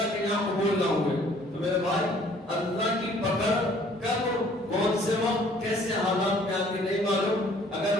کے یہاں قبول نہ ہوئے۔ تو میرے بھائی اللہ کی پکڑ کب، کون سے وقت، کیسے حالات میں آتی نہیں معلوم۔ اگر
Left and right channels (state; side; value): normal; both; correlation 0.57